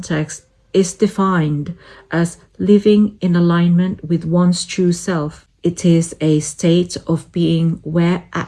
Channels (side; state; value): both; identical; correlation 1.00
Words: is defined as living in alignment with one's true self. It is a state of being where